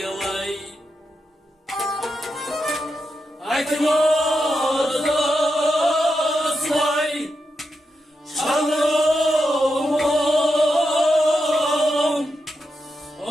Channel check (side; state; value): both; normal; correlation 0.86